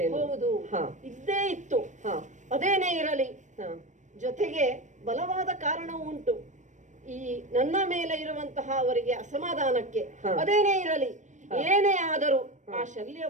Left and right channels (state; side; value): late; left; 0.35 ms